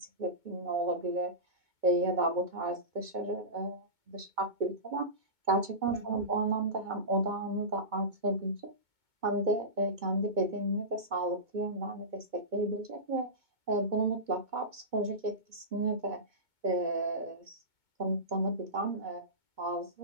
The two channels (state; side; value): late; left; 2.2 ms